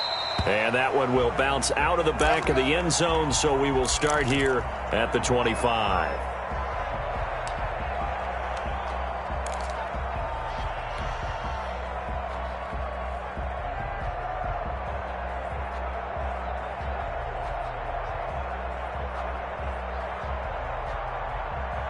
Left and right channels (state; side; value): identical; both; correlation 1.00